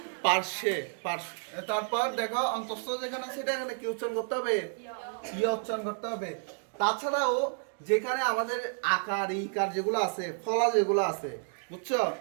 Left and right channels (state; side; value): silent; left; 57 dB below the other